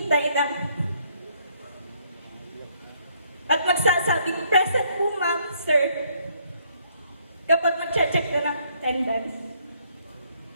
ng at magsasabing, present po ma'am, sir, kapag mag-check na ng attendance.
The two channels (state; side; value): inverted; both; correlation -0.68